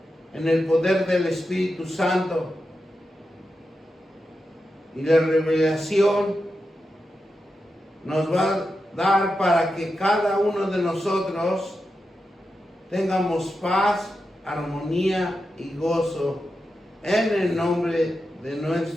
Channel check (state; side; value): normal; both; correlation 0.89